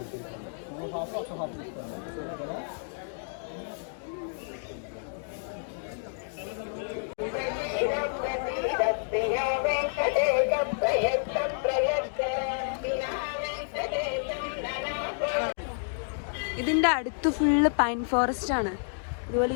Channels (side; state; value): right; silent; digital silence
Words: ഇതിന്റെ അടുത്ത് ഫുള്ള് പൈൻ ഫോറസ്റ്റ് ആണ്. ഇതുപോലെ